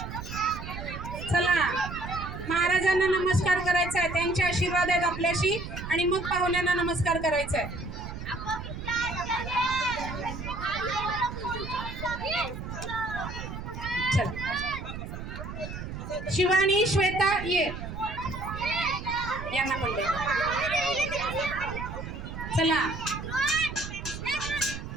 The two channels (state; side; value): noise; right; rumble, 8 dB below the sound